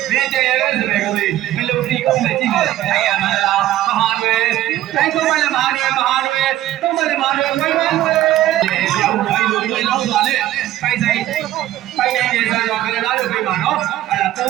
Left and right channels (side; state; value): left; quieter; 14.0 dB